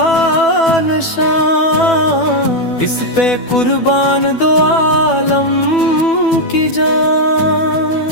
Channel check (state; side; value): late; right; 12 ms